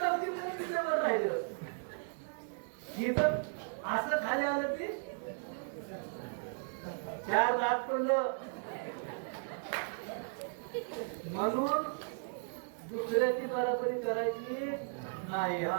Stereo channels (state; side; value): silent; left; digital silence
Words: ती तिच्यावर राहिलं. ही तर असं खाली आलं की चार दात पडलं. म्हणून दुसऱ्याची बराबरी करायची नाही.